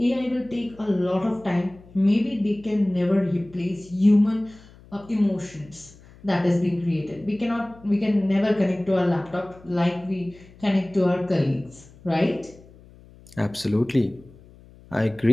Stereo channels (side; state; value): left; noise; hum, 23 dB below the sound